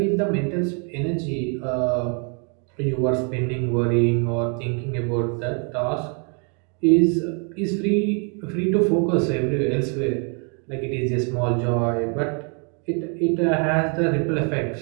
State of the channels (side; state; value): left; quieter; 38.7 dB